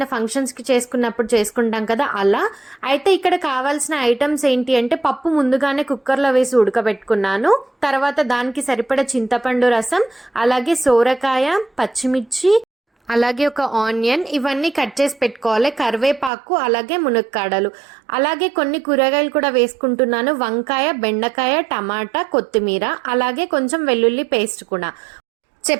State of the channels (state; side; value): drops out; left; at 16.3 s